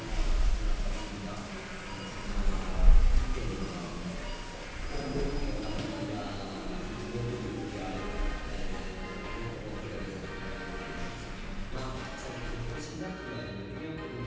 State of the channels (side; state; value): both; identical; correlation 1.00